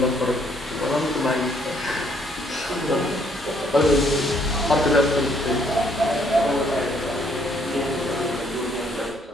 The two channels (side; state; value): both; normal; correlation 0.67